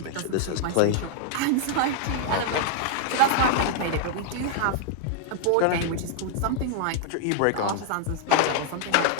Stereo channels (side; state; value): both; different; correlation 0.00